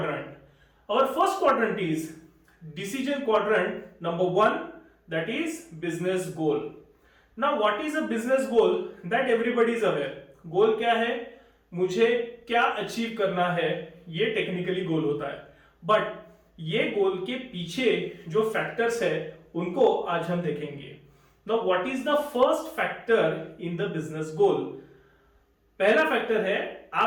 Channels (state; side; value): identical; both; correlation 1.00